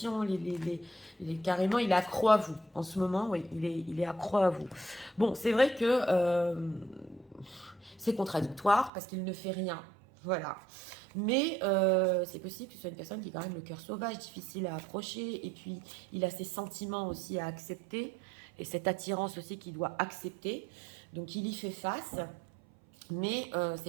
carrément, il est accro à vous. En ce moment, oui, il est accro à vous. Bon, c'est vrai que c'est contradictoire parce qu'il ne fait rien. Voilà. Mais c'est possible que ce soit une personne qui a quand même le cœur sauvage, difficile à approcher. Et puis, il a ses sentiments aussi à accepter. Et cette attirance aussi qu'il doit accepter. Donc, il y fait face. Mais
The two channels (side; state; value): left; drops out; at 8.9 s